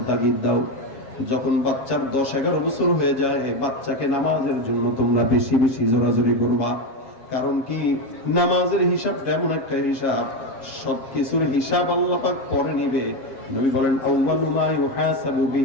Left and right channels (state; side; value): late; right; 7.3 ms